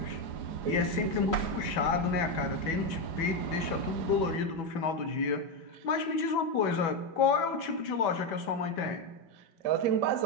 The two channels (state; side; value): late; right; 5.1 ms